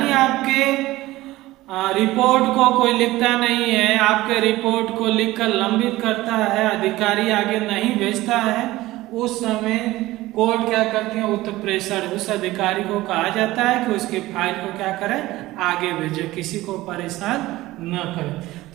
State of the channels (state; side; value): quieter; left; 17.7 dB